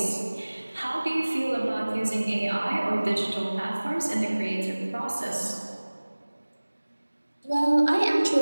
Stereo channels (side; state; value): both; inverted; correlation -1.00